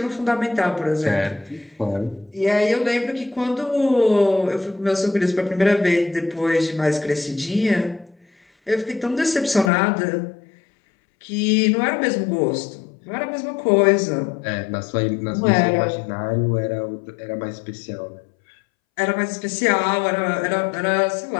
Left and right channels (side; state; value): right; drops out; at 9.7 s